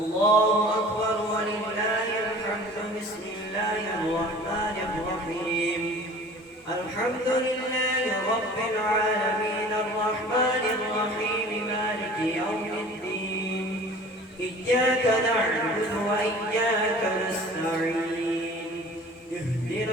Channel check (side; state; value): both; normal; correlation 0.44